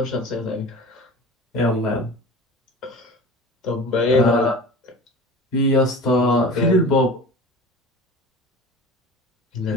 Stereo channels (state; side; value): normal; both; correlation 0.36